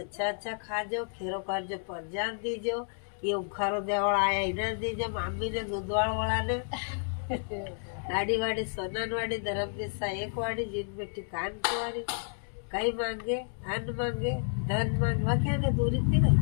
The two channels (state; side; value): silent; right; digital silence